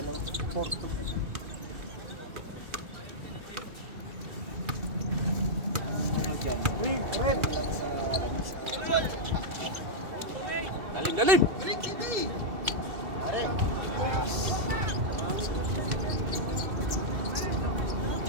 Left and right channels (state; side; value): late; left; 2.7 ms